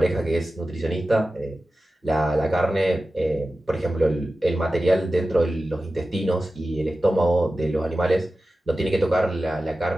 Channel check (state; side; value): normal; both; correlation 0.94